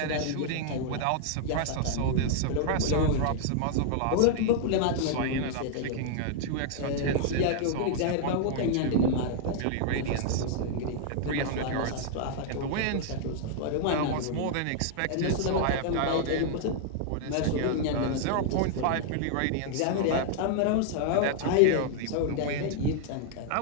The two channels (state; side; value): different; both; correlation -0.01